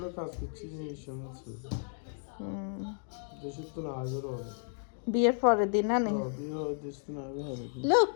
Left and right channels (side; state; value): right; silent; digital silence